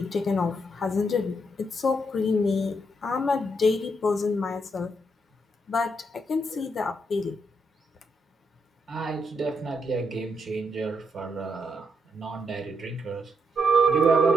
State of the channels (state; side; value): normal; both; correlation 0.78